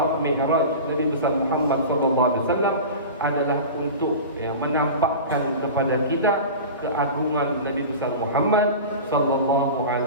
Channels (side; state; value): both; inverted; correlation -0.32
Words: Mi'raj Nabi besar Muhammad sallallahu alaihi wasallam adalah untuk menampakkan kepada kita keagungan Nabi besar Muhammad sallallahu